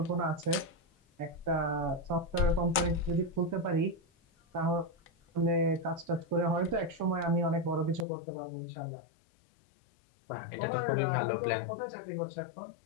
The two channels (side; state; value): right; drops out; at 8.1 s